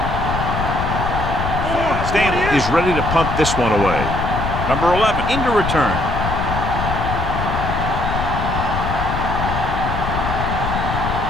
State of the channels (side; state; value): left; noise; rumble, 3 dB below the sound